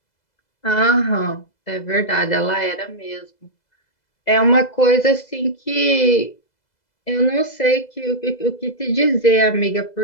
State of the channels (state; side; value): late; right; 2.0 ms